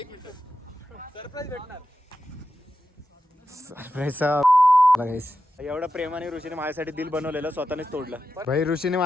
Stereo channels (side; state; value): both; normal; correlation 0.90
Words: एवढा प्रेमाने ऋषीने माझ्यासाठी दिल बनवलेलं, स्वतःनेच तोडलं. भाई ऋषीने